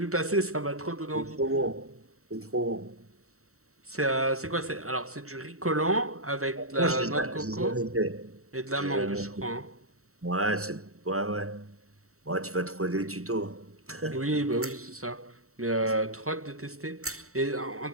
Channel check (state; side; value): late; left; 0.64 ms